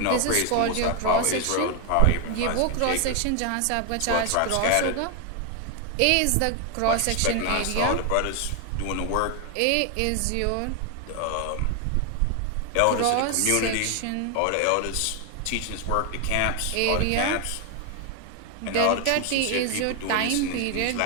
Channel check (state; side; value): different; both; correlation 0.01